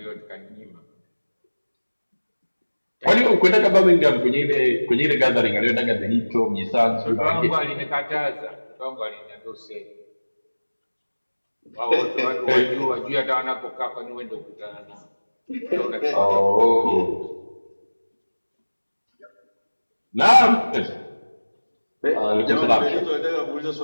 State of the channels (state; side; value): inverted; both; correlation -1.00